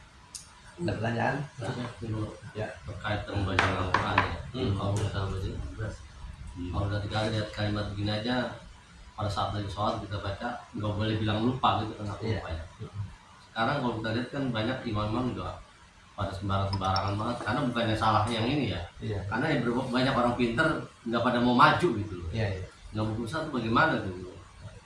Ada pertanyaan? Ya, terkait dengan bacaan Al-Quran ya. Kalau misalnya kalau ketika lihat kalimat begini aja, pada saat lagi sholat kita baca nggak boleh bilang lupa gitu, kenapa lupa ya. Sekarang kalau kita lihat kan banyak imam-imam juga pada sembarangan banget, karena bukannya salah yang ini ya. Karena banyak orang pinter nggak pada mau maju gitu loh. Nggak mau berusaha tuh bagaimana gitu.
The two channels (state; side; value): identical; both; correlation 1.00